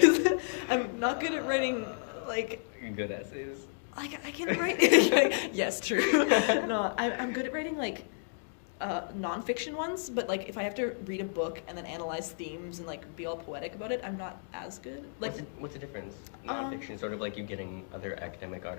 I'm not good at writing like You're good at essays? I can write. Yes, true. No, I'm good at writing like nonfiction ones, but like if I have to read a book and then analyze themes and like be all poetic about it, I'm not as good. Like, What's the difference? Nonfiction, sort of like you getting other academic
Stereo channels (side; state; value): right; silent; digital silence